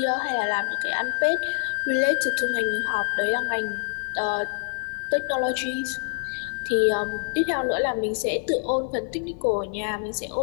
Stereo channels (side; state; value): right; silent; 57 dB below the other